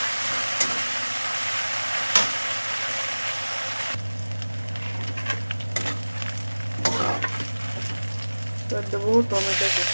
এবার দেবো টমেটো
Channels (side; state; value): both; inverted; correlation -1.00